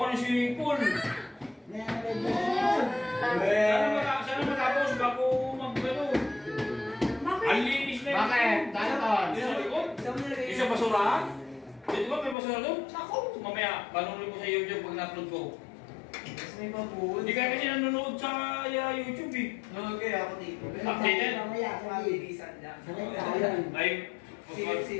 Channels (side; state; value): right; drops out; at 12.4 s